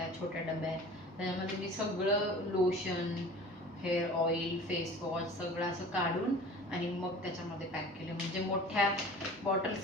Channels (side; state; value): both; normal; correlation 0.42